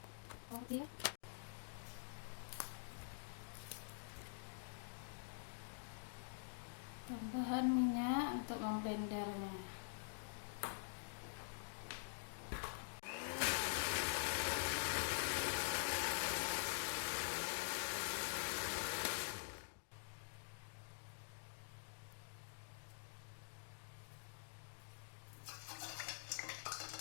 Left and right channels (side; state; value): right; silent; digital silence